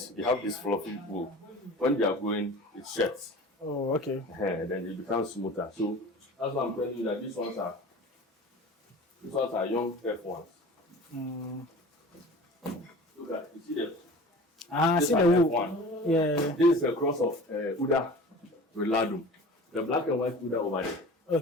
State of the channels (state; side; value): normal; both; correlation 0.39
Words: they have this fluffy wool. When they are growing, it sheds. Oh, okay. Then it becomes smoother. So that's why I'm telling you that these ones are young F1s. Look at, you see them? I see the wool. F1. Yeah. This is a cross of Uda with Ladoum. The black and white Uda over there.